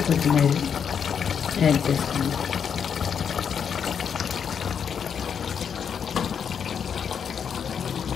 కొత్తిమీర యాడ్ చేసుకోండి.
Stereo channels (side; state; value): right; quieter; 7.3 dB